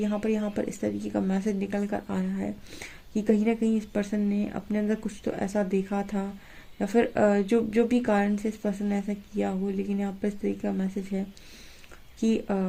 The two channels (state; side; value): identical; both; correlation 1.00